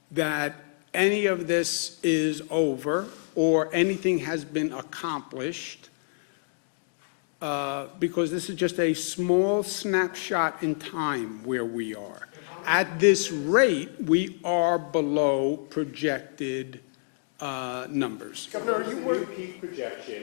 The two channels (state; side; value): silent; right; digital silence